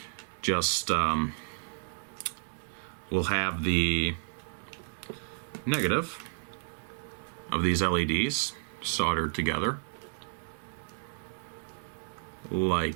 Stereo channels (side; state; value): left; silent; 57 dB below the other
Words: Just, we'll have the negative of these LEDs soldered together.